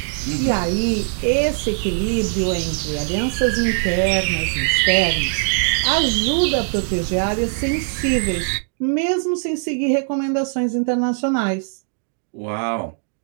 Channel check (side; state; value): left; silent; digital silence